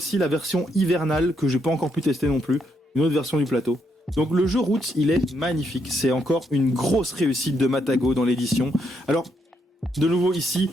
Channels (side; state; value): both; normal; correlation 0.77